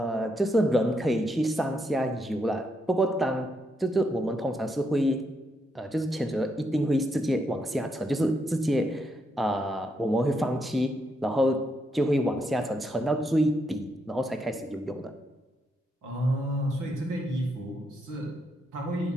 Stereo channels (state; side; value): normal; both; correlation 0.79